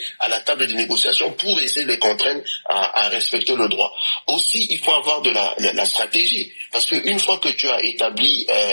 à la table de négociation pour essayer de les contraindre à respecter le droit. Aussi, il faut avoir de la stratégie, parce qu'une fois que tu as établi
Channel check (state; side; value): inverted; both; correlation -1.00